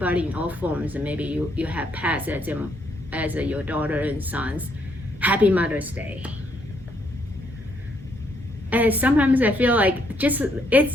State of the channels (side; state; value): both; normal; correlation 0.72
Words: in all forms, and maybe you have pets as your daughter and sons. Happy Mother's Day. And sometimes I feel like